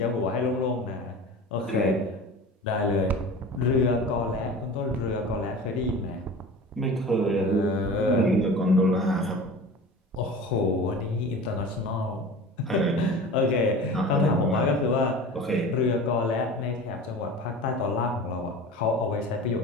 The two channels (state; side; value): normal; both; correlation 0.36